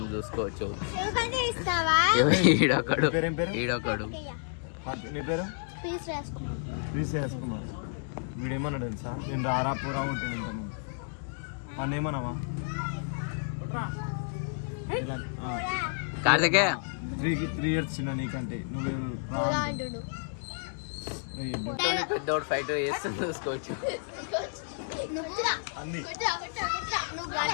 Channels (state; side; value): silent; right; digital silence